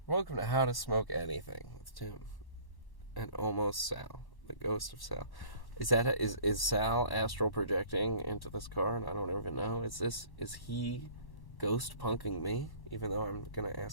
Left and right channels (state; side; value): late; right; 1.1 ms